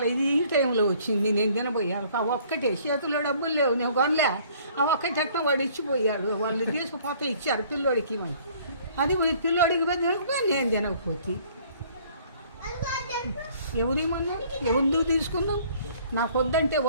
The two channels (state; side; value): inverted; both; correlation -0.57